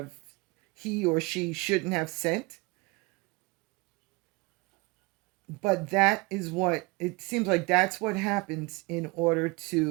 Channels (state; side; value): quieter; left; 26.0 dB